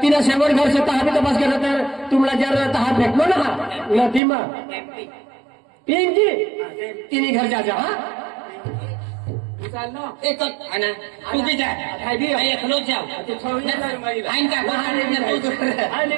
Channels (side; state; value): left; drops out; at 4.2 s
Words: तिनं शेवट घर से तहा भी तपास केला तर तुम्हाला जर तहा भेटलो ना नदी मग पिंकी तिने घर जा हा एक आना तू भी जा मैं एकलो जाओ आइन का आणि